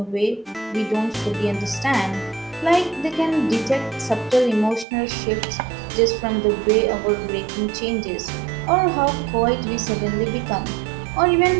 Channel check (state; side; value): drops out; left; at 4.9 s